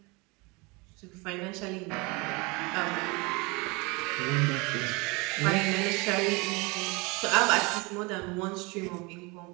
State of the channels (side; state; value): left; quieter; 26.9 dB